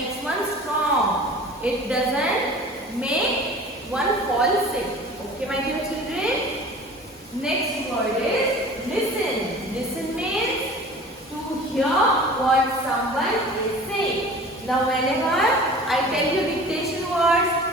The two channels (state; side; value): normal; both; correlation 0.42